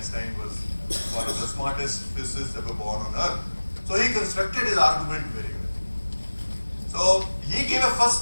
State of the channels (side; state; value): both; inverted; correlation -1.00